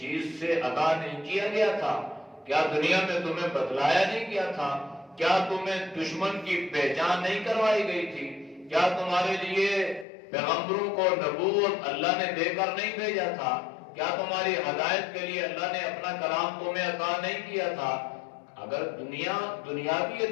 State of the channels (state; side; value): drops out; right; at 10.1 s